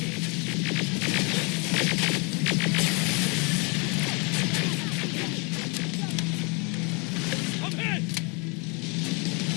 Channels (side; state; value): right; quieter; 32.0 dB